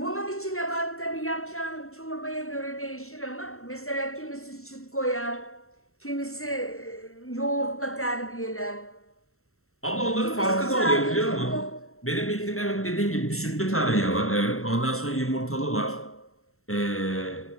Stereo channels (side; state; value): right; late; 0.63 ms